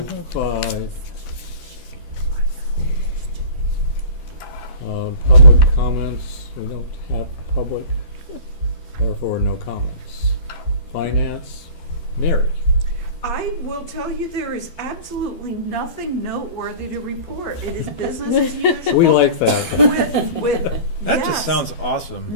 Public comments, we don't have public, therefore no comments. Finance, Mary. I will tell you, there is absolutely nothing noteworthy to report. It is business as usual. We like that. With That yes, just sounds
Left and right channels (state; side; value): late; right; 12 ms